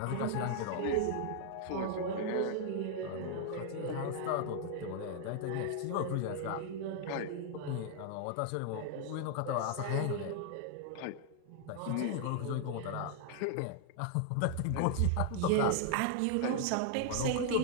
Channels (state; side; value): different; both; correlation -0.01